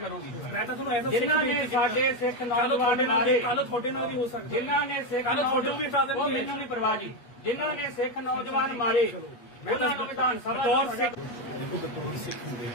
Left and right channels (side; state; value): right; late; 8.2 ms